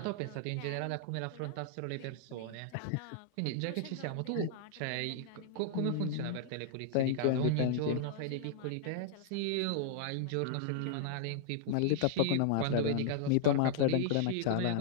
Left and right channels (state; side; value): different; both; correlation -0.01